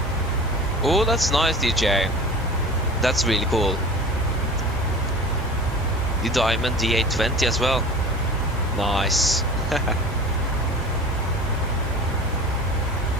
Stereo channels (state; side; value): normal; both; correlation 0.37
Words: Oh, that's nice, DJ. That's really cool. The Diamond D820 as well. Nice.